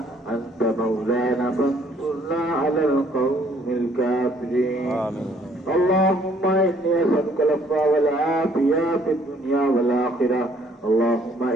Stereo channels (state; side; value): normal; both; correlation 0.63